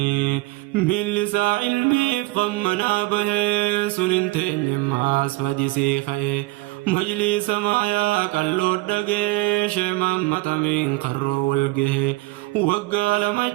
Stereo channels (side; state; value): left; quieter; 20.5 dB